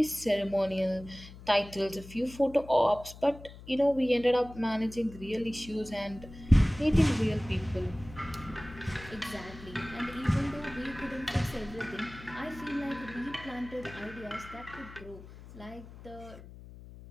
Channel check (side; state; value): left; noise; hum, 17 dB below the sound